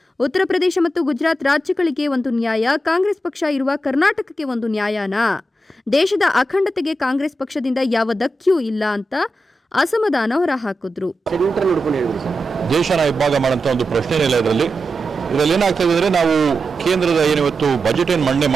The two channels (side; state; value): both; normal; correlation 0.89